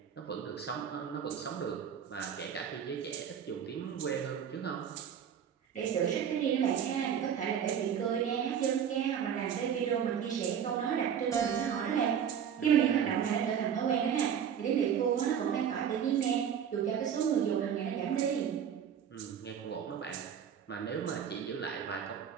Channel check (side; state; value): left; quieter; 8.3 dB